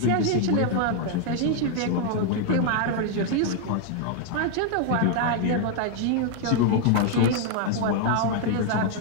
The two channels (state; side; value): different; both; correlation 0.00